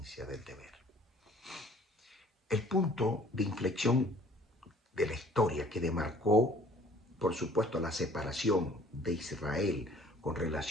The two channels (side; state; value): both; normal; correlation 0.54